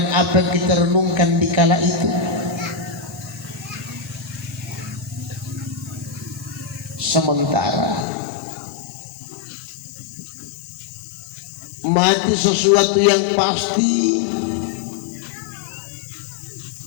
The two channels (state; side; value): drops out; right; at 8.1 s